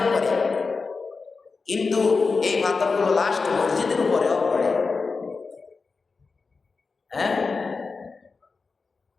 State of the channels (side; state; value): right; quieter; 4.4 dB